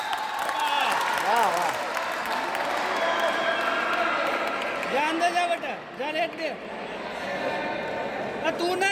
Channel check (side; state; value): both; identical; correlation 1.00